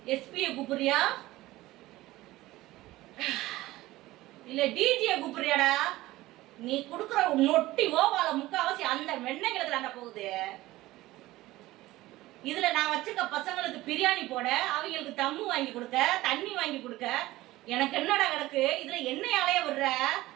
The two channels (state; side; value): quieter; left; 17.6 dB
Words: எஸ்பியை கூப்பிடுறியா இல்ல டிஜியை கூப்பிடுறியாடா? நீ கொடுக்குற நொட்டி ஓவால முக்காவாசி அந்த வெண்ணெய்களுக்கு தாண்டா போகுது. இதுல நான் வச்சுக்க பசங்களுக்கு பிரியாணி போட, அவங்களுக்கு தம்மு வாங்கி கொடுக்க, தண்ணி வாங்கி கொடுக்க, எனக்கு என்னடா கிடக்கு? இதுல என்னையாலைய விடுற?